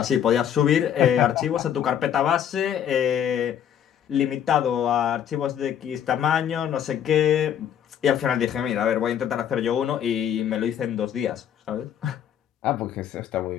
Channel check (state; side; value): quieter; right; 9.5 dB